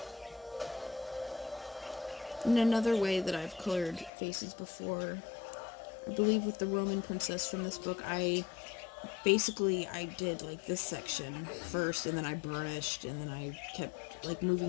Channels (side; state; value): right; drops out; at 4.1 s